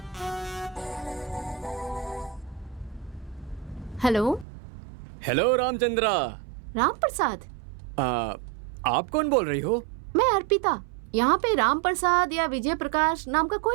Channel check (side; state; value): left; drops out; at 4.5 s